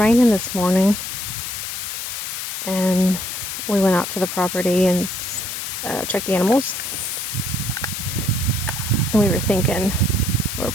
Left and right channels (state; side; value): noise; left; hiss, 5 dB below the sound